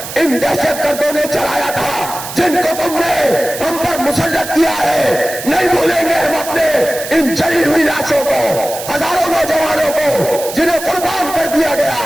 ان دہشت گردوں نے چلایا تھا، جن کو تم نے ہم پر مسلط کیا ہے. نہیں بھولیں گے ہم اپنے ان جلی ہوئی لاشوں کو، ہزاروں نوجوانوں کو جنہیں قربان کر دیا گیا.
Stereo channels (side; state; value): right; noise; hiss, 10 dB below the sound